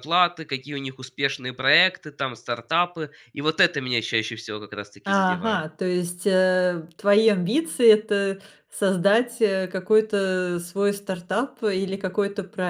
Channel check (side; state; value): both; identical; correlation 1.00